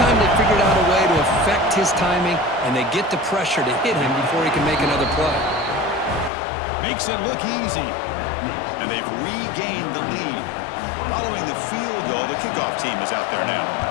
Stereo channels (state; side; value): drops out; right; at 6.3 s